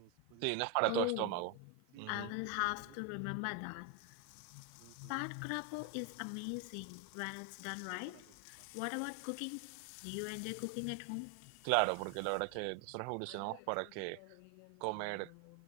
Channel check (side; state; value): both; different; correlation 0.01